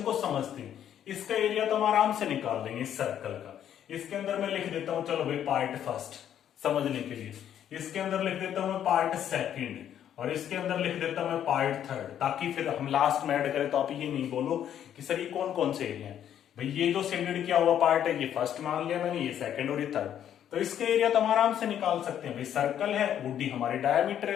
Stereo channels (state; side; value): quieter; right; 10.1 dB